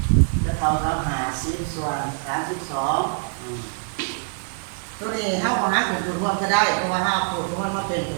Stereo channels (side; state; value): left; silent; digital silence